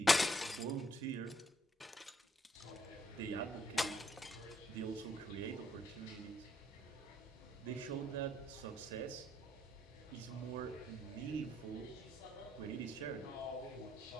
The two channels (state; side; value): normal; both; correlation 0.71